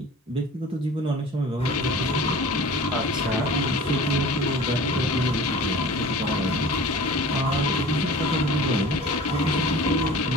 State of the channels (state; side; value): normal; both; correlation 0.41